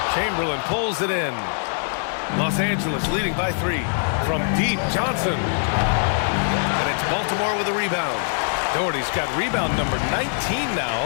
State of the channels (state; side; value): silent; right; 62 dB below the other